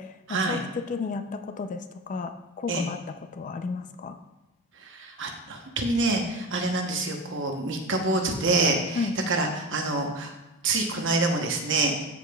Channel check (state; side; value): normal; both; correlation 0.26